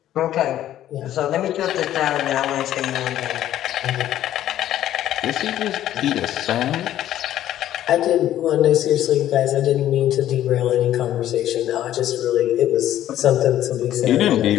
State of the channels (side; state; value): right; quieter; 12.3 dB